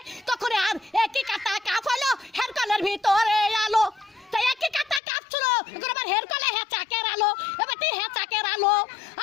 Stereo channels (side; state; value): right; drops out; at 5.0 s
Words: তখন আর একই কাটা কাপ হলো, হেরকলের ভিতরে আলো, তো একই কাটা কাপ ছিল, এখন আবার হেরকলে হেঁচাকের আলো, এবার তুই হেঁচাকের আলো,